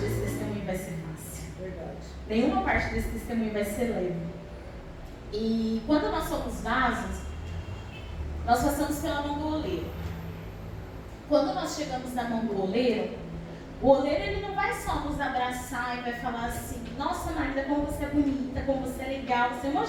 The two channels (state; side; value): identical; both; correlation 1.00